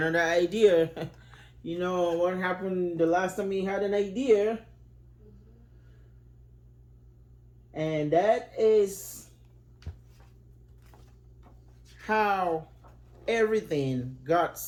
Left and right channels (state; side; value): identical; both; correlation 1.00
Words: idea. You know what happened the last time he had an idea? And that is how everything got